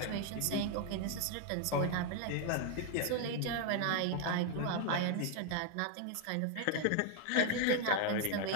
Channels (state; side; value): different; both; correlation 0.01